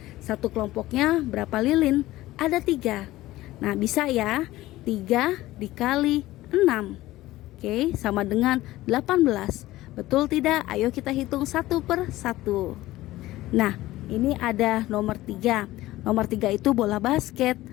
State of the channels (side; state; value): right; quieter; 16.8 dB